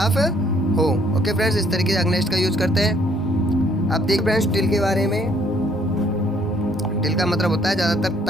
हो? ओके फ्रेंड्स, इस तरीके से अगेंस्ट का यूज करते हैं। अब देख फ्रेंड्स, टिल के बारे में। टिल का मतलब होता है ज़्यादातर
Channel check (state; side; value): normal; both; correlation 0.64